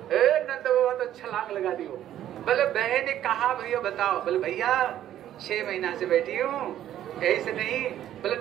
नंद बाबा तो छलांग लगा दी। बोले बहन ने कहा भैया बताओ, बोले भैया 6 महीना से बैठी हूँ, ऐसे नहीं। बोले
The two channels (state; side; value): quieter; left; 11.8 dB